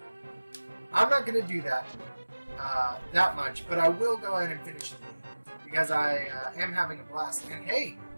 I'm not going to do that that much, but I will go ahead and finish the game, because I am having a blast. And hey,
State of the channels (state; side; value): inverted; both; correlation -1.00